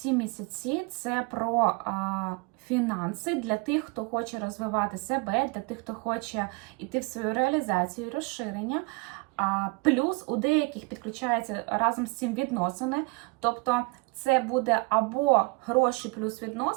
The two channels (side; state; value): left; quieter; 27.8 dB